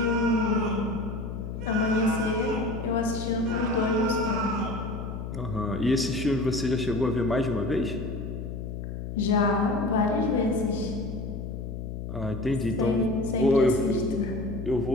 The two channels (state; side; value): noise; left; hum, 7 dB below the sound